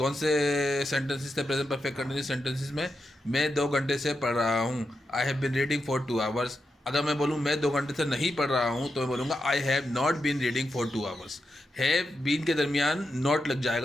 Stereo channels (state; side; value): normal; both; correlation 0.87